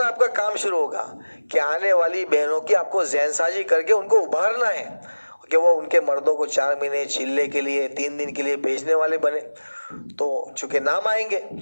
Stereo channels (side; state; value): both; inverted; correlation -1.00